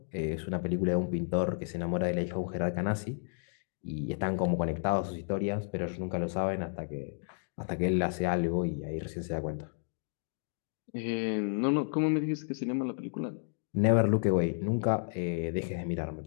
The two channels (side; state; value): right; silent; digital silence